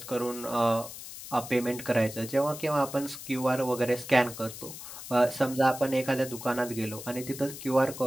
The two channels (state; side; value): noise; left; hiss, 12 dB below the sound